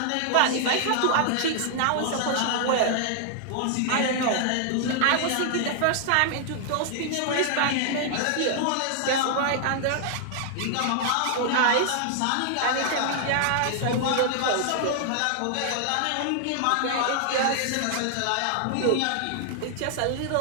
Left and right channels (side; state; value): both; different; correlation 0.00